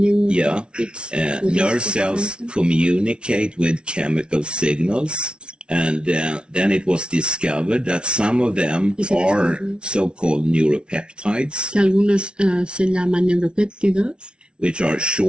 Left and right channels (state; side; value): late; left; 0.057 ms